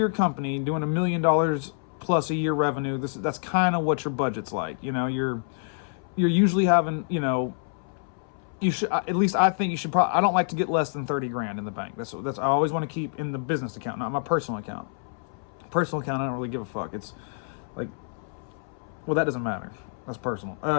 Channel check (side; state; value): right; silent; 60 dB below the other